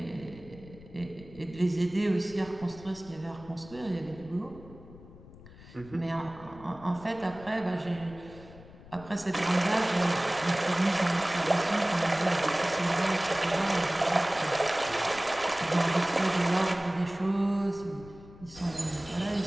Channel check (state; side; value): noise; left; rumble, 19 dB below the sound